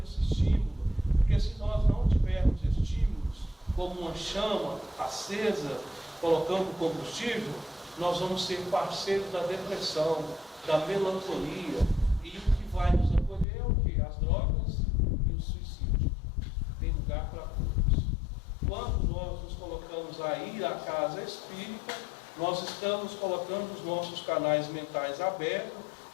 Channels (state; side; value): drops out; right; at 13.5 s